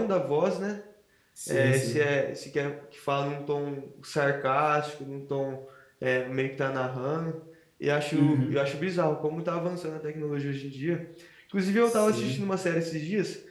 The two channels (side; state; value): both; identical; correlation 1.00